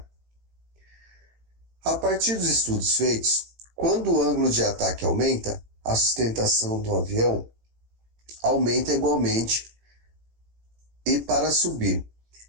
A partir dos estudos feitos, quando o ângulo de ataque aumenta, a sustentação do avião aumenta igualmente, e para subir,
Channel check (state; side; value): late; left; 18 ms